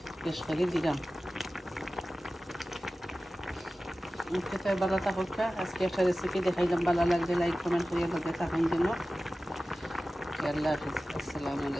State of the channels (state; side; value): normal; both; correlation 0.95